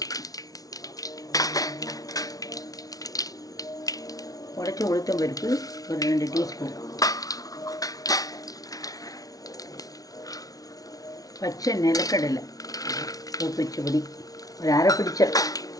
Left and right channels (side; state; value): right; late; 0.18 ms